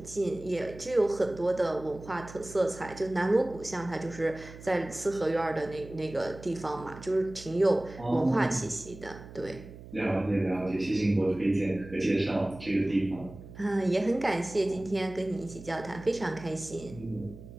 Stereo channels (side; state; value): right; noise; hum, 16 dB below the sound